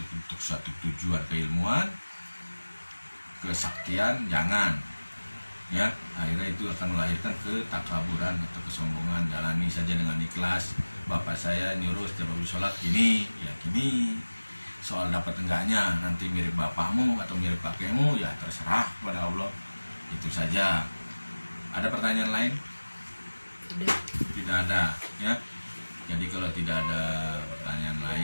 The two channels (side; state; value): both; inverted; correlation -1.00